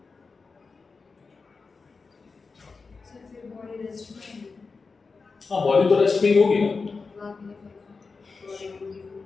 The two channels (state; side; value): quieter; right; 4.5 dB